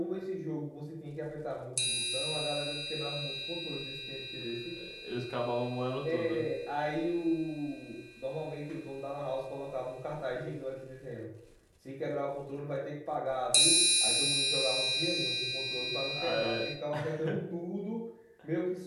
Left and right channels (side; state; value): both; identical; correlation 1.00